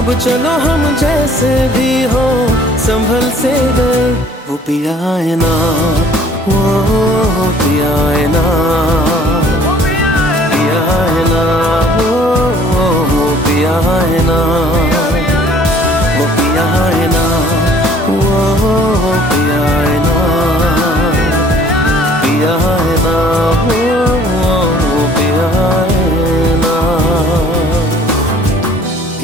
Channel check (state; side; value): normal; both; correlation 0.55